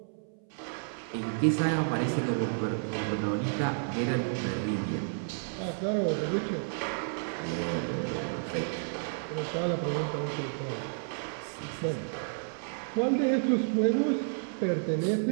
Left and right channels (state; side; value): silent; left; 57 dB below the other